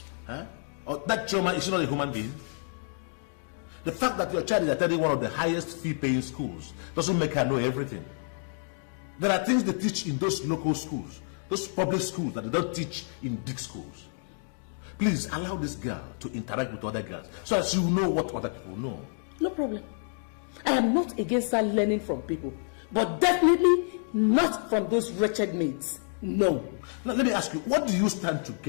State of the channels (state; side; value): silent; right; 59 dB below the other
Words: Huh? Or that Choma, is she not a human being? The fact that your child is attending one of the highest fee-paying schools doesn't make her know everything. There are things they teach in those local schools, those public schools that they don't teach in big schools. Please allow this girl to interact with other girls so as you know what other people know. No problem. I am not against her learning from people, but definitely not from those wretched mates. No. Now let me ask you, what do you stand to